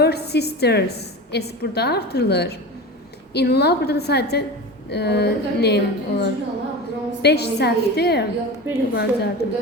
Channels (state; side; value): normal; both; correlation 0.29